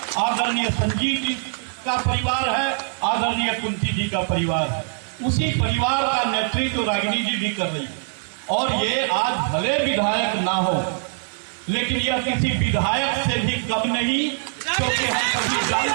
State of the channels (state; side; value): silent; left; 64 dB below the other